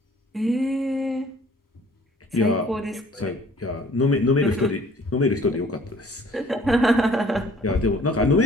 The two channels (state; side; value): normal; both; correlation 0.55